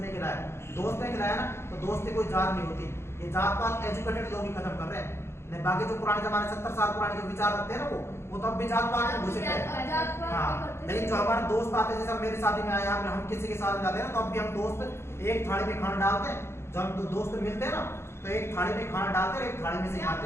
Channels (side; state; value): right; late; 0.12 ms